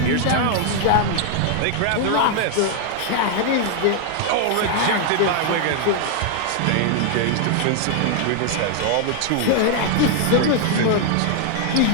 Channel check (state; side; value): different; both; correlation 0.00